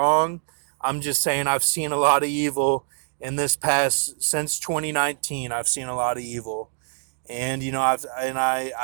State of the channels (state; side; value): silent; left; digital silence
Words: I'm just saying I've seen a lot of evil in this past, since 2019. I've seen a lot of evil, and